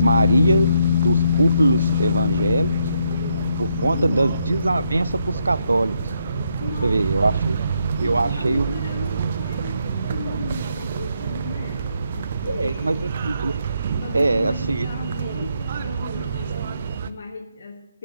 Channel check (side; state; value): both; inverted; correlation -0.76